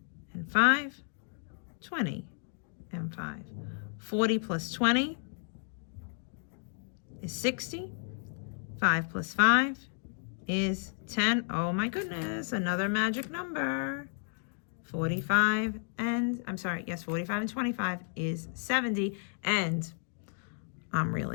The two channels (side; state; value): right; silent; 56 dB below the other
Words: and 5, 20 and 5. 40 plus 20 is 60. 5 plus 5 is 10. Oh my goodness, another magic number. 45 and 25 is 70. And I'm